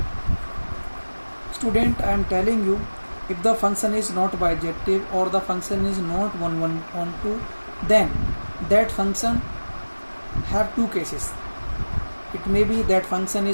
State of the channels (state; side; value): inverted; both; correlation -1.00